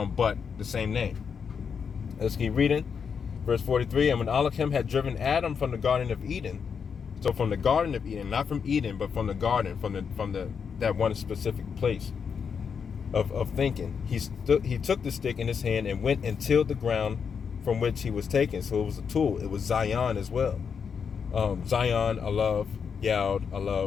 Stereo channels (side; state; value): right; quieter; 6.5 dB